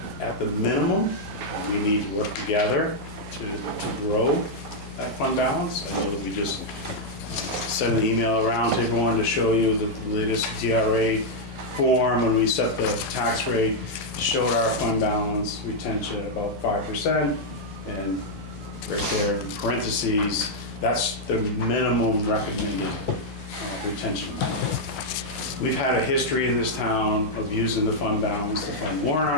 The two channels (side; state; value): right; noise; hum, 21 dB below the sound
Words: at the minimum. We need to work together to grow that fund balance. I know that we just sent an email around to everyone to show you the latest DRA form when we set the tax rate, showed our fund balance retention at about 5%, and right there in parentheses, that's the minimum recommended retention amount. We've had a history in this town of using the fund balance to fund warrant